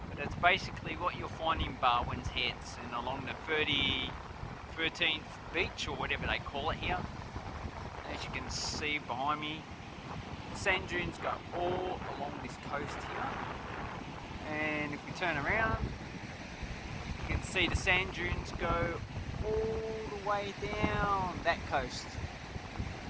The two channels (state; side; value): identical; both; correlation 1.00